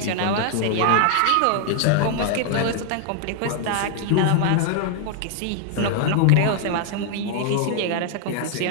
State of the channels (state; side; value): different; both; correlation 0.00